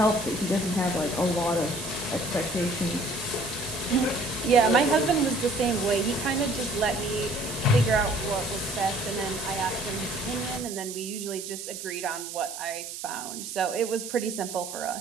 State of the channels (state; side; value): noise; right; hiss, 9 dB below the sound